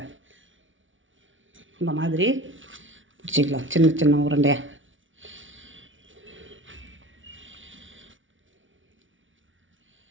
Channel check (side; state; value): left; late; 0.56 ms